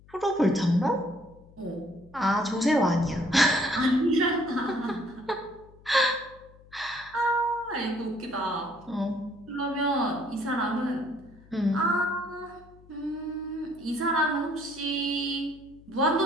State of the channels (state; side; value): noise; left; hum, 25 dB below the sound